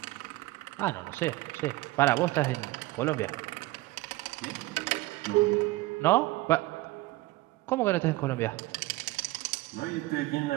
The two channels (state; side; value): quieter; left; 19.3 dB